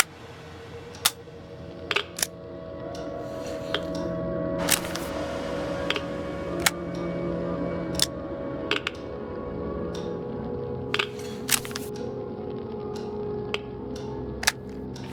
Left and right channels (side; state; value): both; identical; correlation 1.00